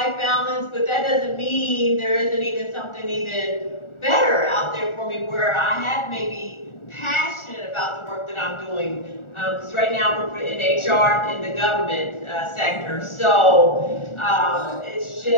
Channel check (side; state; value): right; late; 1.4 ms